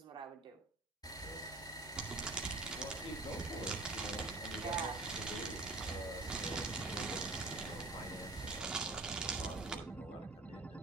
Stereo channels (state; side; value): quieter; left; 3.0 dB